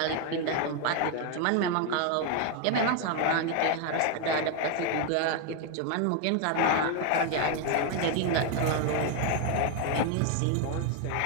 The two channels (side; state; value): both; different; correlation 0.01